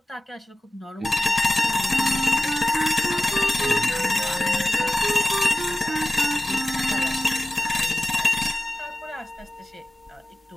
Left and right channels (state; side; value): normal; both; correlation 0.95